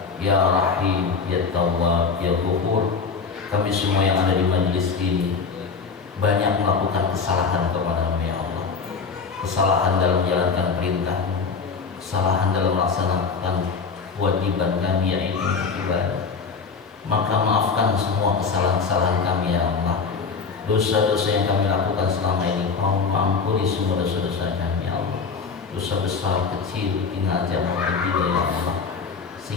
ya Rahim, ya Tawwab, ya Ghafur. Kami semua yang ada di majelis ini banyak melakukan kesalahan kepada-Mu ya Allah. Kesalahan dalam menjalankan perintah-Mu, kesalahan dalam melaksanakan kewajiban kami yaitu ibadah. Maka maafkan semua kesalahan-kesalahan kami ya Allah. Dosa-dosa yang kami lakukan selama ini, ampuni semua dosa-dosa kami ya Allah. Dosa besar, kecil, tinggal maupun tidak ya Allah.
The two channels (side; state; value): right; quieter; 5.2 dB